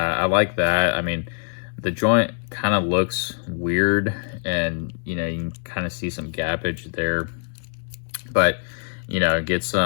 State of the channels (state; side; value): silent; right; digital silence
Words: like that. I mean, the joint kind of looks weird, and you know, you can kind of see some gappage there. but you know, get